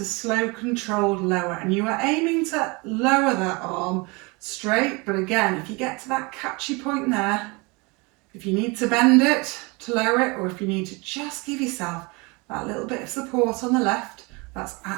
slow controlled lower, and you are aiming to lower that arm straight, but again, if you get to that catchy point there, If you need to bend it to lower it, or if you need to just give yourself that little bit of support on the left, that's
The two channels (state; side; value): quieter; left; 27.5 dB